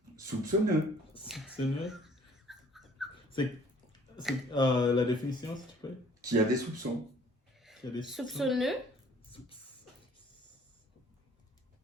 Soupçonneux. Soupçonneux. C'est la définition, s'il te plaît. Qui a des soupçons. Qui a des Soupçonneux.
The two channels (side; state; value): both; normal; correlation 0.56